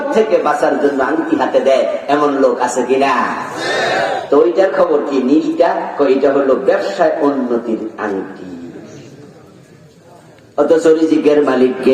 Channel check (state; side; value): identical; both; correlation 1.00